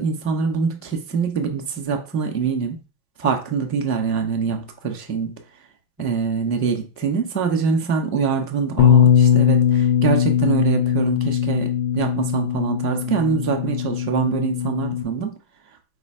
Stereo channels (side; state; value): right; late; 5.6 ms